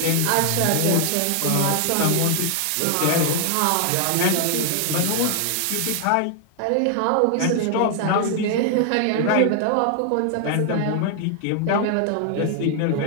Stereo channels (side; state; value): both; different; correlation 0.00